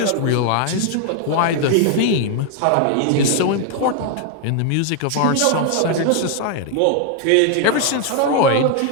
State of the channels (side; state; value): both; different; correlation 0.00